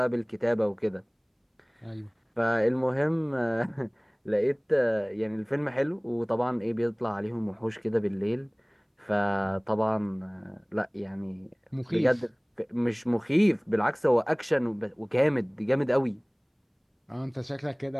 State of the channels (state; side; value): identical; both; correlation 1.00